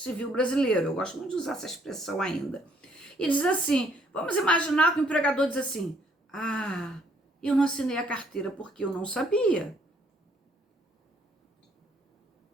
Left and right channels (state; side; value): normal; both; correlation 0.66